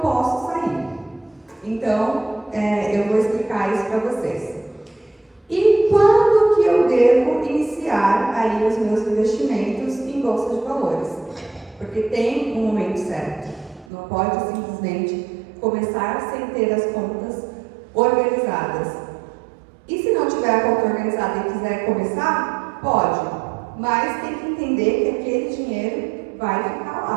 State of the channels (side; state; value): left; drops out; at 13.9 s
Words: posso sair. Então, eu vou explicar isso para vocês. E quando que eu devo iniciar aí os meus investimentos em bolsa de valores? Porque tem um momento certo. Não pode simplesmente começar sem ter as contas organizadas. E se não tiver a conta organizada e quiser começar, pode. Mas tem que entender que aquele dinheiro vai ficar